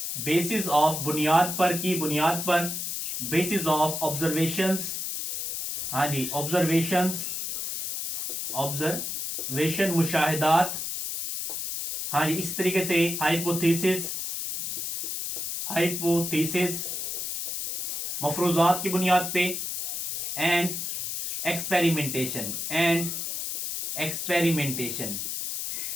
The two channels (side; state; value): left; noise; hiss, 3 dB below the sound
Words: basis of, बुनियाद पर, की बुनियाद पर, बेसिस ऑफ ऑब्जर्वेशंस, हाँ जी, ऑब्जर्वेशंस, ऑब्जर्वेशन, मुशाहिदात, हाँ जी, इस तरीके से हाइपोथेसिस, हाइपोथेसिस, मफरूजात की बुनियाद पे, एंड एक्सपेरिमेंटेशन, एंड एक्सपेरिमेंटेशन,